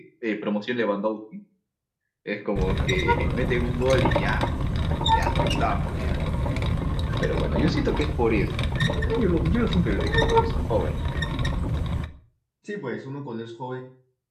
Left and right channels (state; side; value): identical; both; correlation 1.00